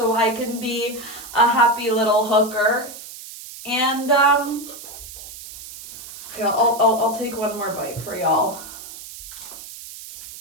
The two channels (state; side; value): noise; right; hiss, 14 dB below the sound